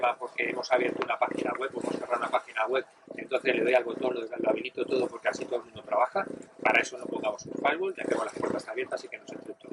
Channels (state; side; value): identical; both; correlation 1.00